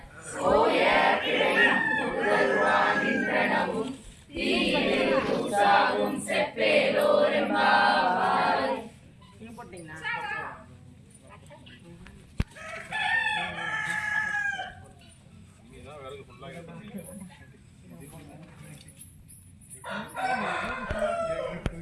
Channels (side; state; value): both; identical; correlation 1.00